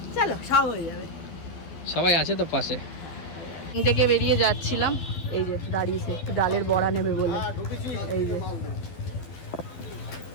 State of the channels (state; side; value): late; right; 11 ms